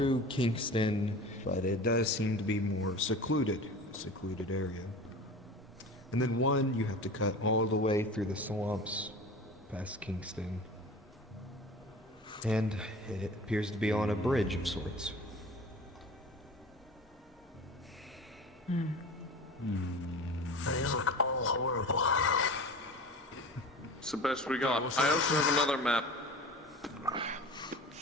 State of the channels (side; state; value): both; normal; correlation 0.36